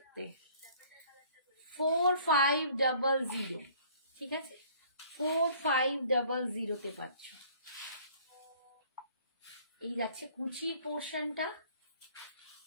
4500, ঠিক আছে? 4500 তে পাচ্ছ। এই যাচ্ছে কুচির পোর্শনটা,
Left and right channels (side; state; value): both; inverted; correlation -0.55